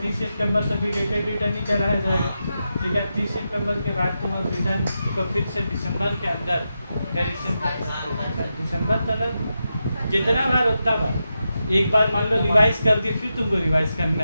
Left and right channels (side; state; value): both; inverted; correlation -0.88